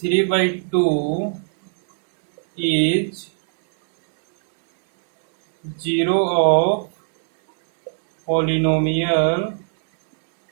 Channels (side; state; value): left; silent; 63 dB below the other